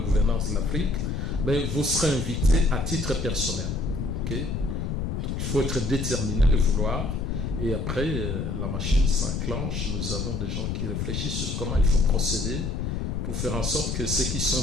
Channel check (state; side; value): noise; left; rumble, 2 dB below the sound